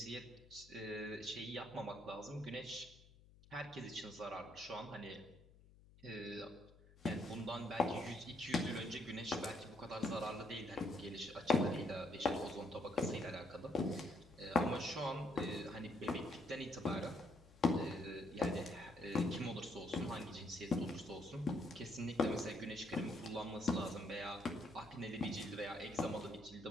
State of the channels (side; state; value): left; noise; hum, 23 dB below the sound